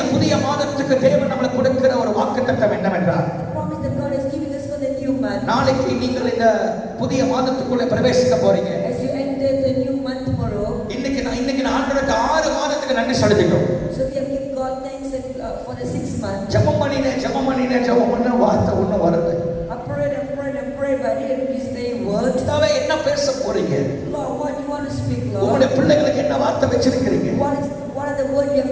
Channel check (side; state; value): both; identical; correlation 1.00